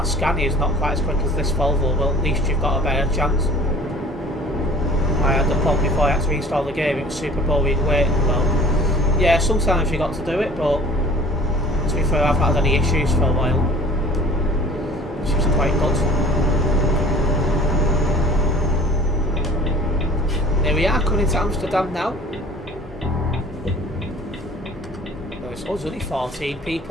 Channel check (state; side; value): normal; both; correlation 0.47